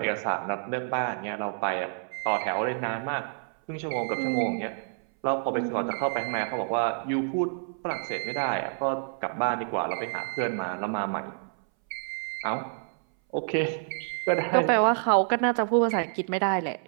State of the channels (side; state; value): left; silent; 59 dB below the other